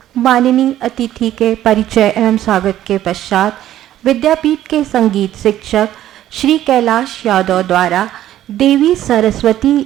माननीय अतिथि के परिचय एवं स्वागत के पश्चात विद्यापीठ के संगीत शिक्षक श्री कैलाश यादव द्वारा देवी सरस्वती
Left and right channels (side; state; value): left; quieter; 12.8 dB